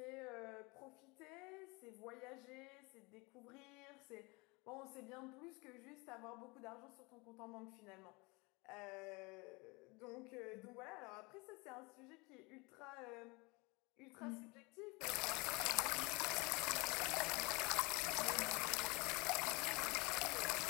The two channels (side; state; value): right; quieter; 26.7 dB